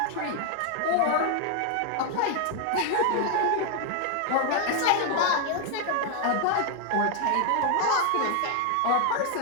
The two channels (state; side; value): different; both; correlation 0.00